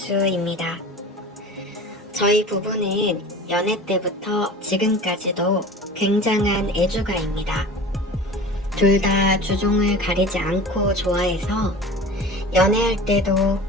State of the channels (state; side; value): normal; both; correlation 0.37